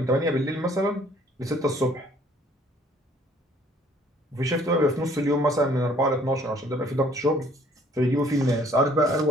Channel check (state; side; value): normal; both; correlation 0.59